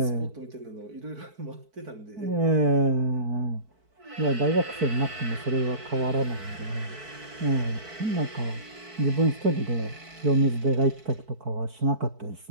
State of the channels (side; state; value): left; late; 4.5 ms